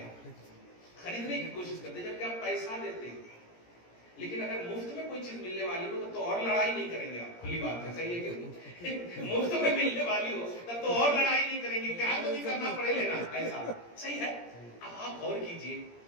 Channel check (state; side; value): late; right; 17 ms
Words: خریدنے کی کوشش کرتے ہیں جبکہ آپ پیسہ دیتے ہیں. لیکن اگر مفت میں کوئی چیز ملنے والی ہو تو اور لڑائی نہیں کریں گے آپ, کھلی بات ہے, صحیح ہے کہ نہیں؟ مفت میں ملنے والی ہو تب تو اور لڑائی نہیں کریں گے, کیا تو نہیں کرنا پڑے لینا, ایسا صحیح ہے. اب آپ غور کیجئے,